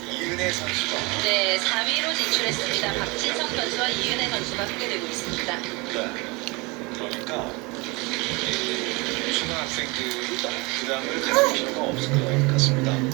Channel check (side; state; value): left; quieter; 26.3 dB